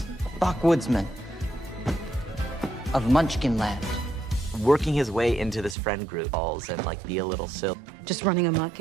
Backwoodsman of Munchkin Land. working his way into this friend group and like be a little silly. Just running amok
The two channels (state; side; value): drops out; left; at 5.8 s